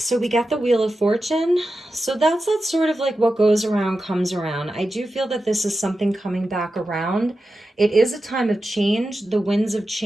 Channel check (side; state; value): both; normal; correlation 0.91